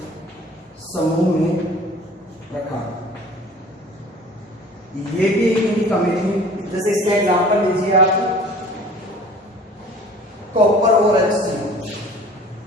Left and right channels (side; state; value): both; normal; correlation 0.47